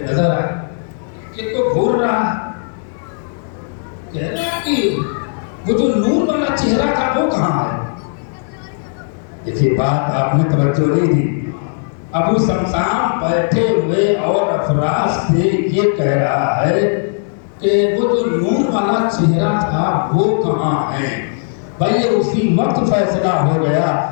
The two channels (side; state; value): right; silent; digital silence